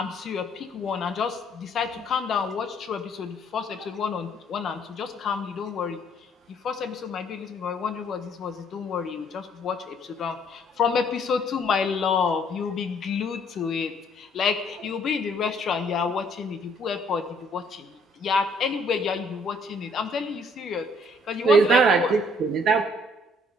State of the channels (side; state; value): both; normal; correlation 0.63